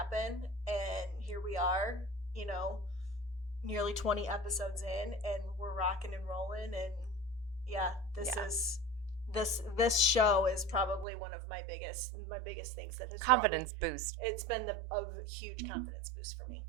and here we are, nearly 20 episodes in, and we're rocking and rolling. And this show is probably one of my biggest things that has confidence boost. It's been a huge confidence boost for me,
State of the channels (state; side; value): drops out; left; at 11.1 s